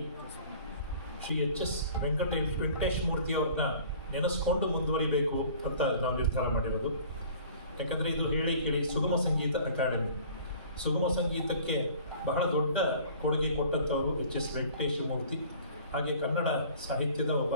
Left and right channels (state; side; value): inverted; both; correlation -0.48